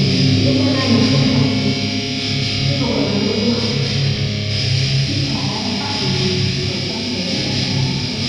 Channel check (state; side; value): identical; both; correlation 1.00